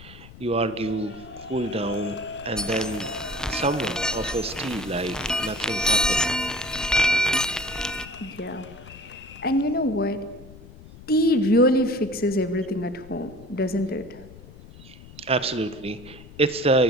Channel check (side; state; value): left; noise; rumble, 19 dB below the sound